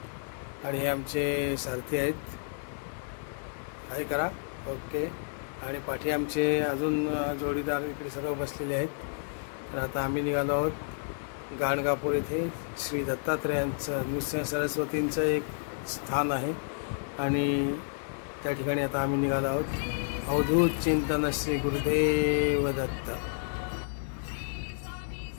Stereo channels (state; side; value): silent; right; digital silence